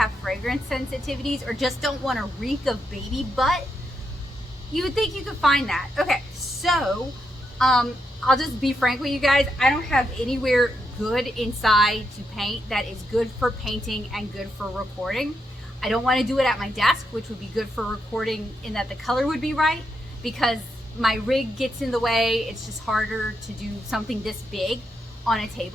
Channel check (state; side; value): normal; both; correlation 0.82